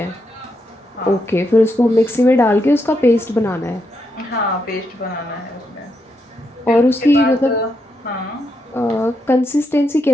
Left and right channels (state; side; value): normal; both; correlation 0.81